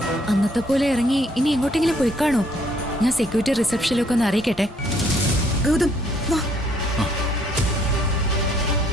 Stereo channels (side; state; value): both; normal; correlation 0.66